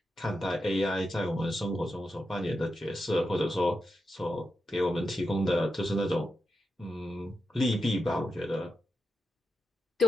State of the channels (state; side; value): normal; both; correlation 0.88